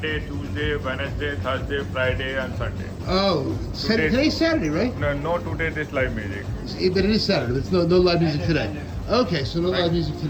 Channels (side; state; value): both; identical; correlation 1.00